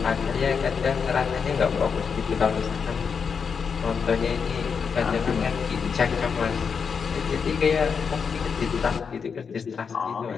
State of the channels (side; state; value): right; quieter; 6.1 dB